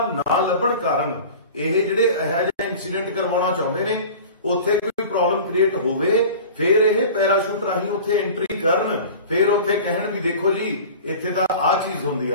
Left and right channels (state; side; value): inverted; both; correlation -0.39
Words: ਨਾ ਲੱਭਣ ਕਾਰਨ ਇਹ ਜਿਹੜੇ ਇਹੋ ਜਿਹਾ ਇਨਸੀਡੈਂਟ ਕਰਵਾਉਣਾ ਚਾਹੁੰਦੇ ਨੇ, ਉੱਥੇ ਕੋਈ ਪ੍ਰੋਬਲਮ ਕ੍ਰੀਏਟ ਹੋਵੇ, ਫਿਰ ਇਹ ਪੈਰਾਸ਼ੂਟ ਰਾਹੀਂ ਉੱਥੇ ਐਂਟਰੀ ਕਰਨ, ਫਿਰ ਉੱਥੇ ਕਹਿਣ ਵੀ ਦੇਖੋ ਜੀ ਇੱਥੇ ਤਾਂ ਆਹ ਚੀਜ਼ ਹੁੰਦੀ